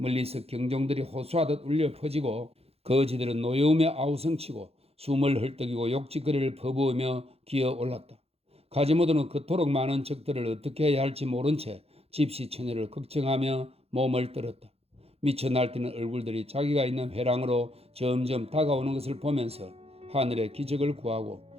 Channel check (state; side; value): late; left; 0.29 ms